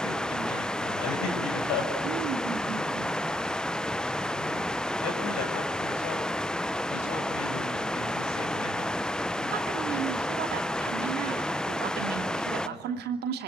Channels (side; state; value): both; normal; correlation 0.77